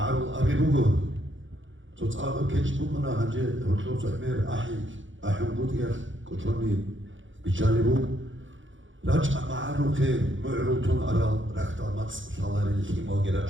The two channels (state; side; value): late; left; 0.56 ms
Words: أبي بوجو تصعب كيش بوجنا هنجي هرتوب سأمير أحيم بودير كتروني بيشالي راجع معرول خير معرول تون أرال ركتا ماتس شالاري الخيمة